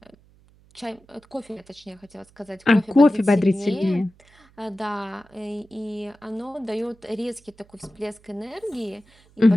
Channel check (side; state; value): right; noise; hum, 29 dB below the sound